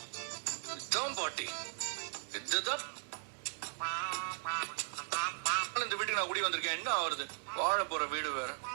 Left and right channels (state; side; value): silent; left; digital silence